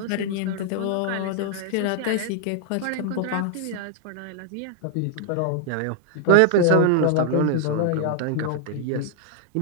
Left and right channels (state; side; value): different; both; correlation 0.00